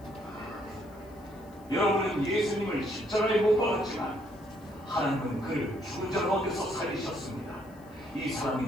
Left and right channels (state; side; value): noise; left; hiss, 29 dB below the sound